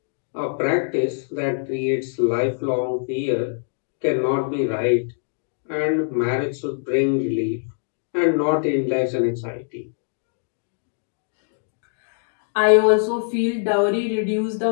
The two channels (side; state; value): right; silent; digital silence